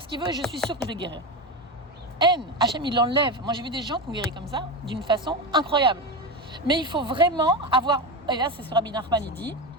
ce qu'il veut, et je suis sûre que je vais guérir. Hachem, il l'enlève. Moi, j'ai vu des gens qui ont guéri comme ça, d'une façon incroyable. Mais il faut vraiment avoir, et là, c'est ce que Rabbi Nachman, il dit,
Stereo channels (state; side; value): normal; both; correlation 0.18